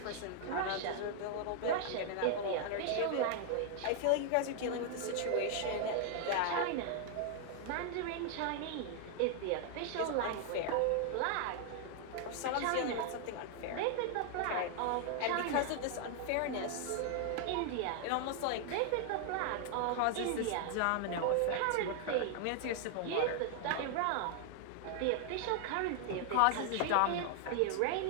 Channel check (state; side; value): different; both; correlation 0.00